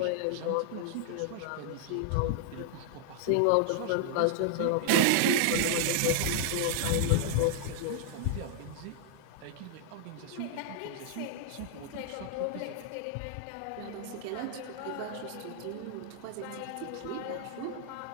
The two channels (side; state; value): both; different; correlation 0.00